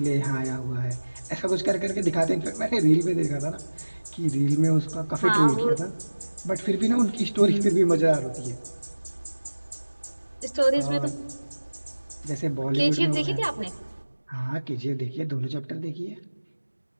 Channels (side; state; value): both; inverted; correlation -1.00